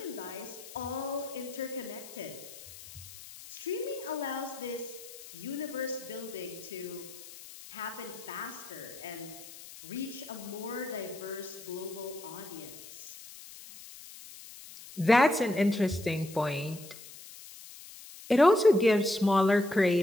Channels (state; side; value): noise; left; hiss, 16 dB below the sound